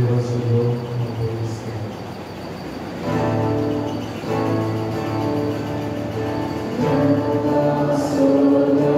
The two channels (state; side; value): identical; both; correlation 1.00